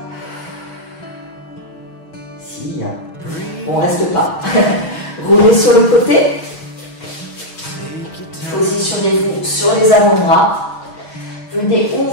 Si, hein. Bon, reste pas. Roulez sur le côté. Positionnez-vous sur les avant-bras. Venez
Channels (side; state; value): right; late; 6.3 ms